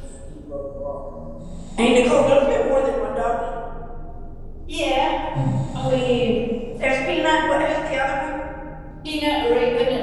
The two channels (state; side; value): identical; both; correlation 1.00